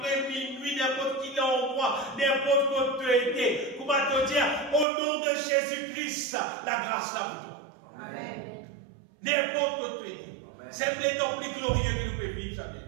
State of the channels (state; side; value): drops out; left; at 4.9 s